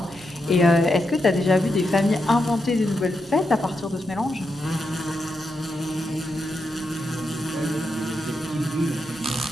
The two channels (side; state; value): right; noise; hum, 27 dB below the sound